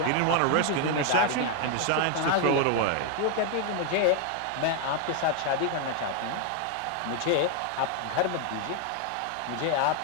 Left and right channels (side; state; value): both; different; correlation 0.01